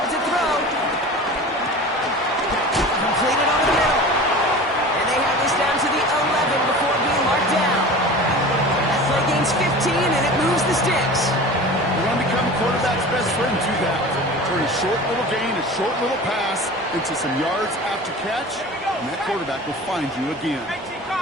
to throw. Completed over the middle. gains 15, and it moves the sticks. You want to become a quarterback's best friend, do that. Turn a short little gain, a short little pass into some yards after catch, and that quarterback will find you again. 18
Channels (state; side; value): normal; both; correlation 0.36